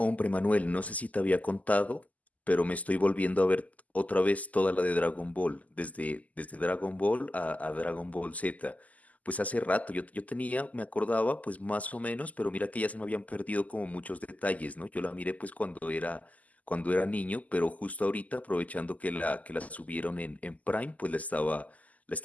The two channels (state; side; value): late; right; 0.075 ms